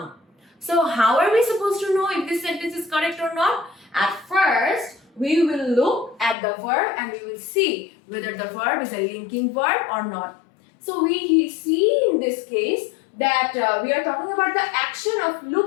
So how are we supposed to know if this sentence is correct or not? At first, we will look at the verb and we will see whether the verb is a linking verb or not. So we see in this case that we are talking about the action of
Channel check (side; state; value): right; drops out; at 6.4 s